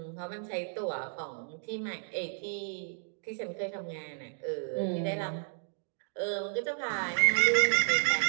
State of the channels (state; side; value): silent; left; digital silence